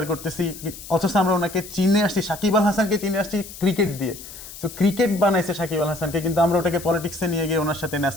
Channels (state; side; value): noise; left; hiss, 14 dB below the sound